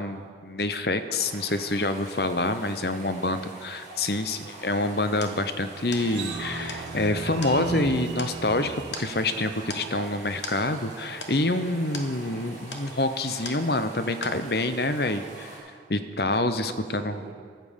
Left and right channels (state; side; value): normal; both; correlation 0.25